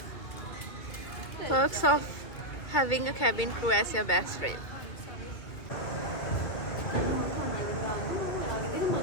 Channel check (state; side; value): late; right; 2.3 ms